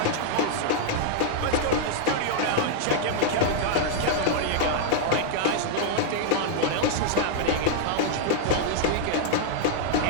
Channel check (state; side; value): different; both; correlation -0.01